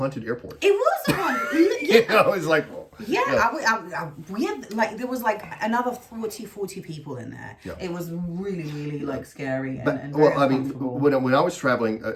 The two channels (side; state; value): both; identical; correlation 1.00